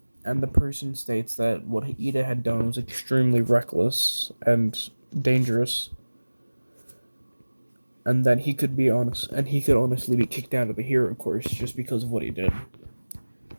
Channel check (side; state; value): both; inverted; correlation -1.00